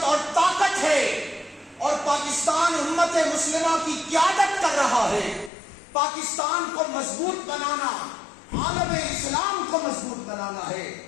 اور طاقت ہے، اور پاکستان امت مسلمہ کی قیادت کر رہا ہے۔ پاکستان کو مضبوط بنانا، عالم اسلام کو مضبوط بنانا ہے۔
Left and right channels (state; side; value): drops out; right; at 5.5 s